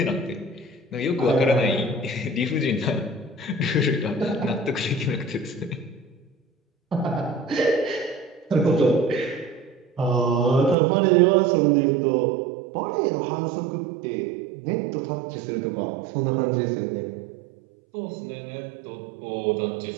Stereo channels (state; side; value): drops out; left; at 10.8 s